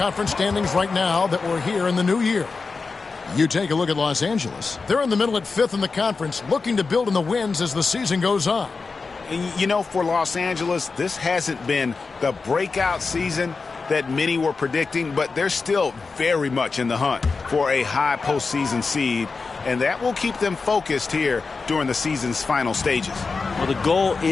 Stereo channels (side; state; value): right; quieter; 4.4 dB